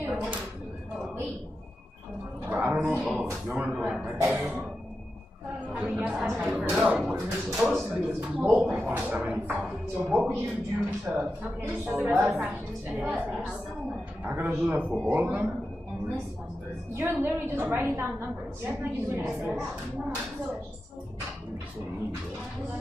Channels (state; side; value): normal; both; correlation 0.90